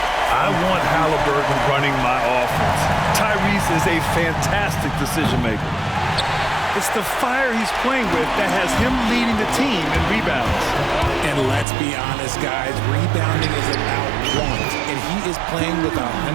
I want Halliburton running my offense. Tyrese is a fantastic decision maker. It's the fire he's playing with that has him leading the team in rebounds. And let's be honest, guys, rebounding is about want, and he is playing with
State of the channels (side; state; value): left; drops out; at 11.7 s